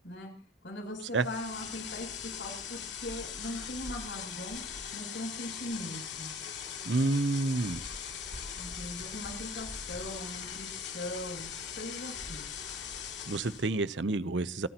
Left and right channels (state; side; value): normal; both; correlation 0.47